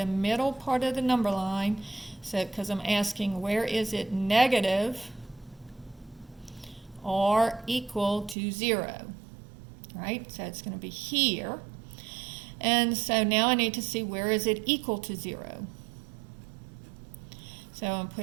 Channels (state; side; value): drops out; left; at 8.3 s